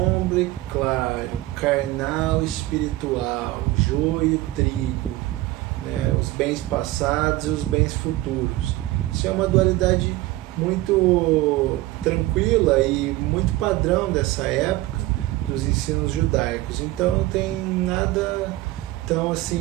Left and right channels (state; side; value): quieter; left; 17.7 dB